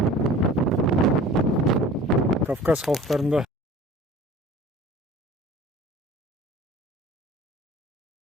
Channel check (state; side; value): normal; both; correlation 0.44